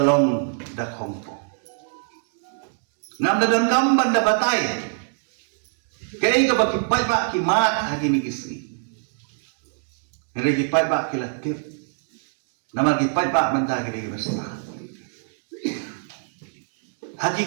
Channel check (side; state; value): left; silent; 63 dB below the other